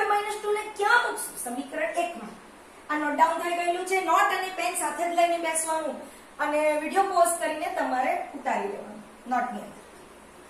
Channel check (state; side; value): identical; both; correlation 1.00